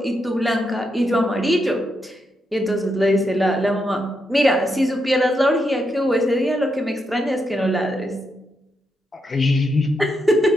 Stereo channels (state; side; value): normal; both; correlation 0.82